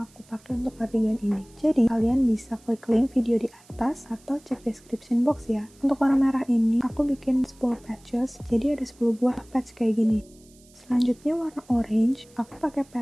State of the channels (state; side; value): noise; right; hiss, 28 dB below the sound